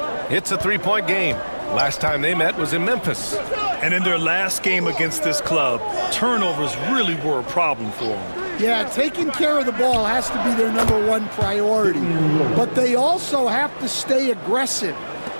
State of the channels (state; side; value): inverted; both; correlation -1.00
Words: It's a three-point game. Last time they met was in Memphis. And in their last game against this club, turnovers really were a problem for them. Yeah, taking care of the ball has to be their #1 priority. But they also have to stay aggressive.